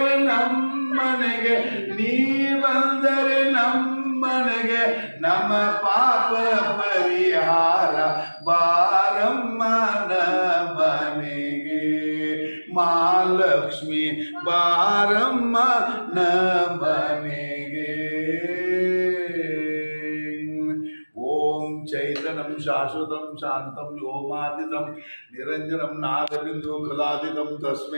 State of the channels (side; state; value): both; inverted; correlation -1.00